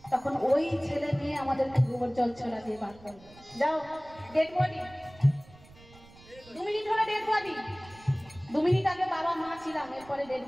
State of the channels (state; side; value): noise; right; rumble, 23 dB below the sound